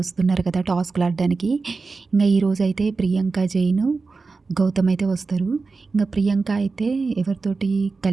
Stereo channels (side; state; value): left; quieter; 4.2 dB